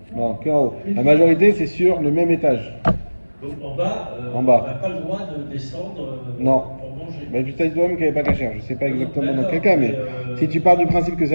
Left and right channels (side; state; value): both; inverted; correlation -1.00